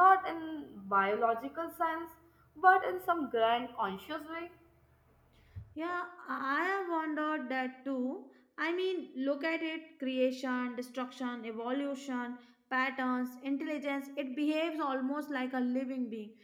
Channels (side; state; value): both; identical; correlation 1.00